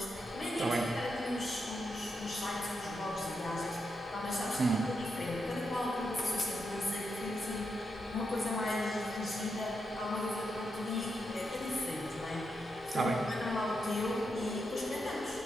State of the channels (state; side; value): normal; both; correlation 0.84